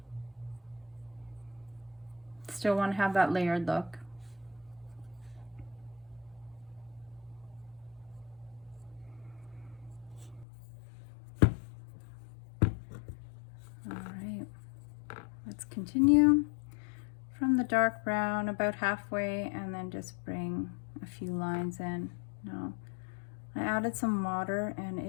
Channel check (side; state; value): right; drops out; at 10.5 s